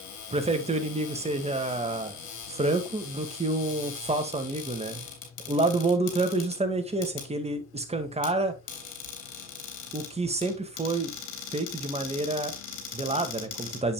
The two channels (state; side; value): normal; both; correlation 0.41